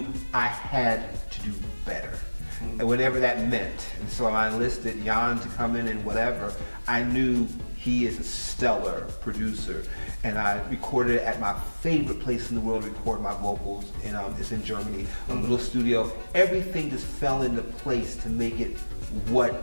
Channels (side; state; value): both; inverted; correlation -1.00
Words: I had to do better, and whatever that meant. And so I enlisted Jan to come in and whatever. I knew he is a stellar producer. And I recorded it at my favorite place in the world to record my vocals. And it's in Germany, a little studio. Everything just fell into place to make it what